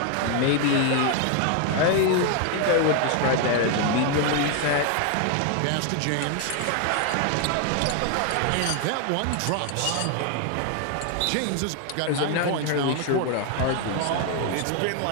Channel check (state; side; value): different; both; correlation 0.01